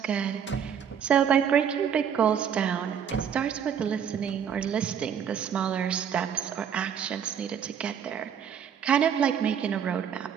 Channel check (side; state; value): left; quieter; 8.1 dB